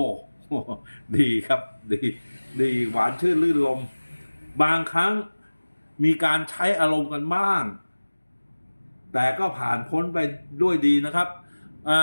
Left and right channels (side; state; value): both; inverted; correlation -1.00